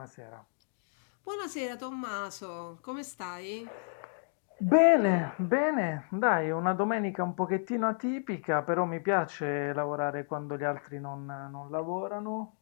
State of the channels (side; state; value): right; silent; 56 dB below the other